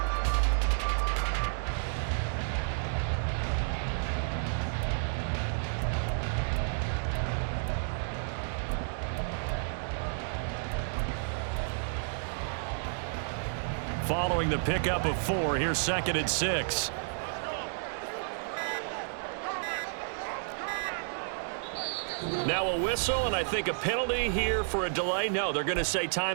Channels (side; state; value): left; silent; digital silence